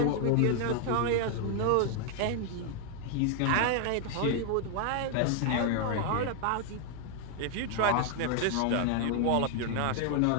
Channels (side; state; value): both; different; correlation 0.00